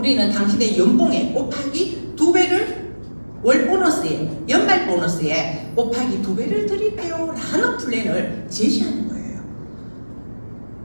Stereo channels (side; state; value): both; inverted; correlation -1.00